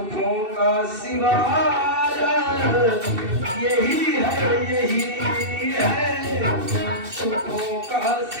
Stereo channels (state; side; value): late; left; 2.7 ms